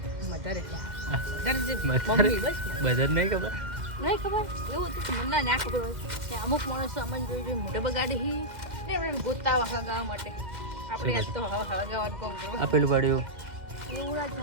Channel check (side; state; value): left; late; 2.1 ms